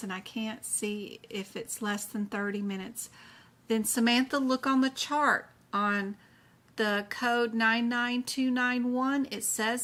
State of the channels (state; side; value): identical; both; correlation 1.00